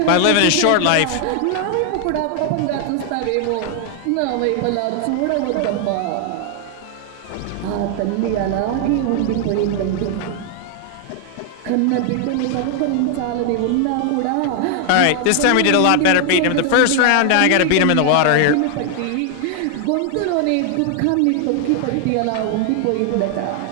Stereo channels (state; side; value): different; both; correlation 0.00